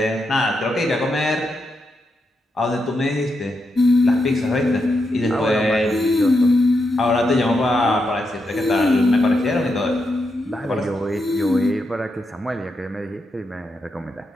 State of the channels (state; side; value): normal; both; correlation 0.84